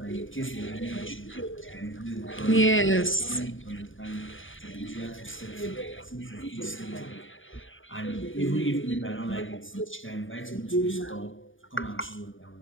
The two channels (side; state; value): right; late; 0.57 ms